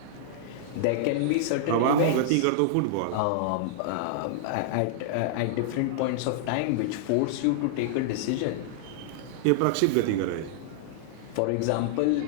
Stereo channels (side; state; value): both; different; correlation -0.01